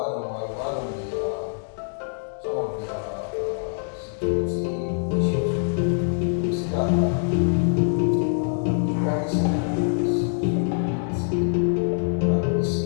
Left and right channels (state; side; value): silent; right; digital silence